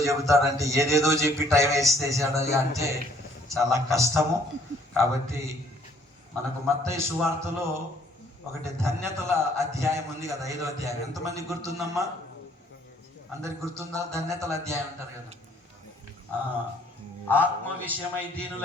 చెబుతాడంటే ఏదేదో చెప్పి టైం వేసేసాడు అంటే చాలా కష్టము. కాబట్టి మనకు మత్తయి సువార్తలో ఒకటి ధన్యతల అధ్యాయం ఉంది కదా, 5వ అధ్యాయం. ఎంతమంది గుర్తుందమ్మా? అందరికి గుర్తుందా? ధన్యతల అధ్యాయం అంటారు కదా. ఆత్మ విషయమై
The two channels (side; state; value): both; normal; correlation 0.61